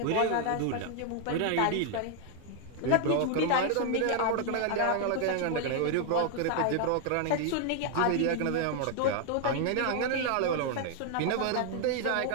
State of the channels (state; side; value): different; both; correlation 0.00